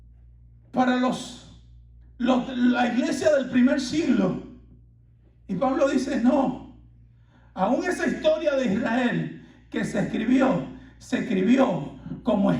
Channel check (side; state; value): both; identical; correlation 1.00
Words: para la iglesia del primer siglo. Y Pablo dice, no, aún esa historia de Israel que se escribió como